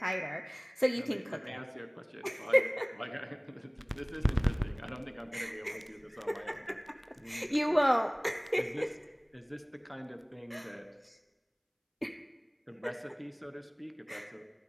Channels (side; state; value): both; identical; correlation 1.00